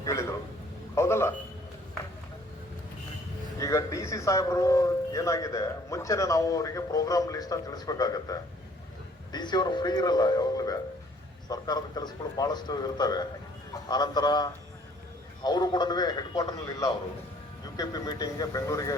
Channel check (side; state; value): both; normal; correlation 0.59